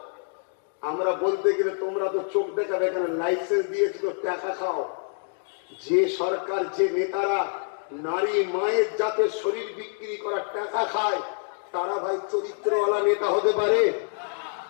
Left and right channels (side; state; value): right; silent; 58 dB below the other